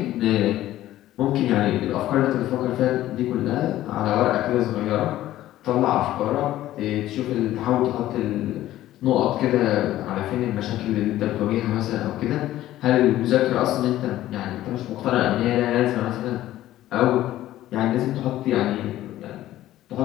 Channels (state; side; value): quieter; right; 14.2 dB